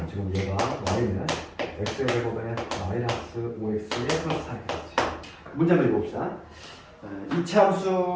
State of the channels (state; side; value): identical; both; correlation 1.00